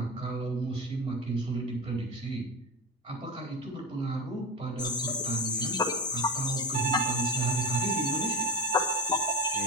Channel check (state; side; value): normal; both; correlation 0.20